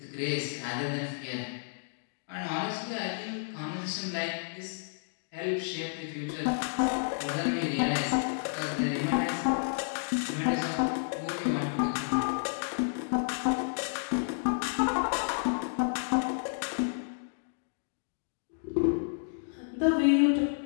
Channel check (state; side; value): silent; right; digital silence